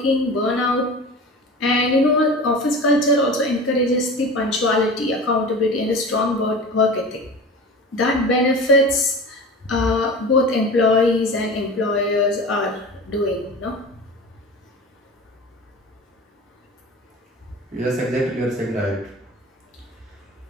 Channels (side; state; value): both; normal; correlation 0.34